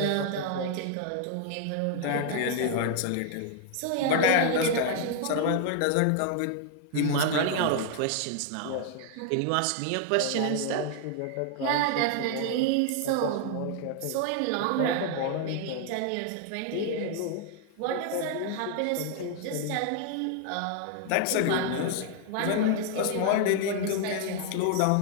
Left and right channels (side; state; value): both; different; correlation 0.00